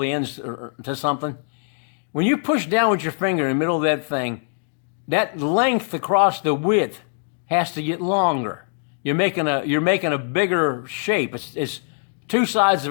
ends to something. When you push down with your finger in the middle of that thing, that length across the width has to get longer. You're making a bigger shape. It's two sides of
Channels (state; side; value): silent; right; digital silence